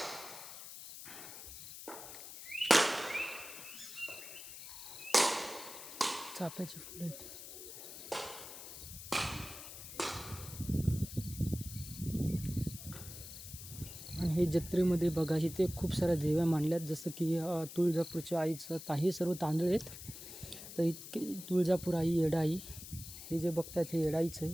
चाफ्याची फुलं आहेत। आणि हे जत्रेमध्ये बघा इथे खूप साऱ्या देव्या मांडल्यात, जसं की तुळजापूरच्या आईचं हे सर्व तांदूळ आहेत। तर इतके तुळजापूर आई, येडाई, हे जे बघतात हे येडाईचं आहे,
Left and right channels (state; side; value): noise; left; hiss, 12 dB below the sound